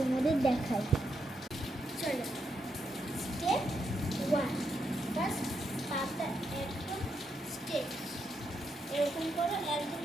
দেখাই। চলো, স্টেপ 1, ফার্স্ট পাটা একদম স্ট্রেট, এরকম করো, একদম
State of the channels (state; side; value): normal; both; correlation 0.81